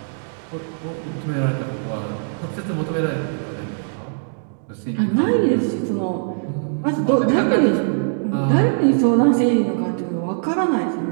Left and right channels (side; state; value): left; silent; digital silence